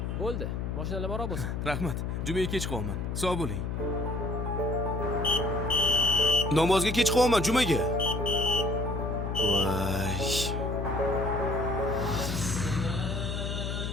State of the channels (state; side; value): noise; left; hum, 2 dB below the sound